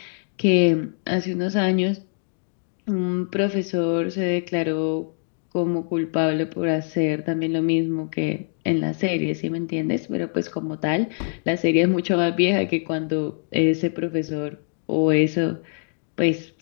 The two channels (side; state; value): right; silent; 57 dB below the other